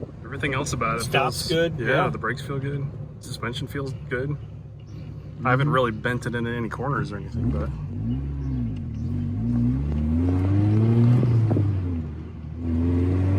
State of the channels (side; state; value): both; identical; correlation 1.00